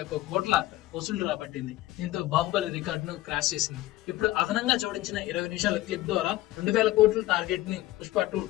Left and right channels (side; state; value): right; quieter; 16.3 dB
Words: కోట్ల వసూళ్లు రాబట్టింది. దీంతో బాహుబలి రికార్డును క్రాష్ చేసింది. ఇప్పుడు అదనంగా జోడించిన 20 నిమిషాల క్లిప్ ద్వారా 2000 కోట్ల టార్గెట్ ని పుష్ప 2